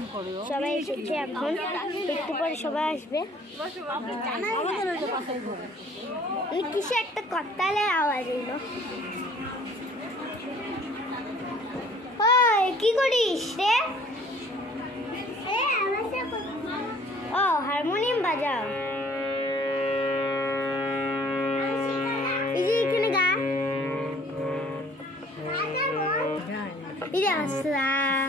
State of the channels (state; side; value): normal; both; correlation 0.55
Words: সবাই এসেছে, এখন একটু পরে সবাই আসবে। কিসে একটা করতালের আওয়াজ এলো। ওই কি করিস রে? ও হারমোনিয়াম বাজাও। এই যে এখানে গা, এই যে আসা,